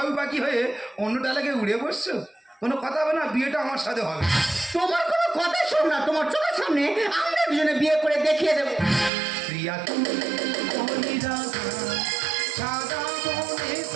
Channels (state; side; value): drops out; left; at 9.1 s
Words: বাকি হয়ে অন্য ডালাকে উড়ে বসছো কোনো কথা হবে না বিয়েটা আমার সাথে হবে তোমার কোনো কথা শোন না তোমার চোখের সামনে আমরা দুজনে বিয়ে করে দেখিয়ে দেবো প্রিয়া তু কলি রাধা সাদা মনে